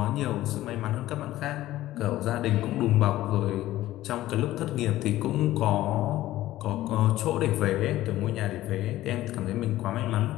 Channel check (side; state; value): right; quieter; 15.2 dB